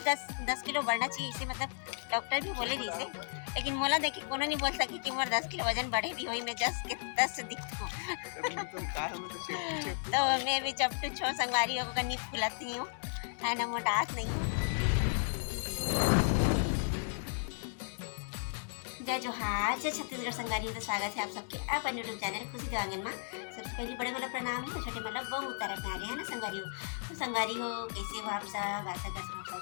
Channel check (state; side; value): silent; right; digital silence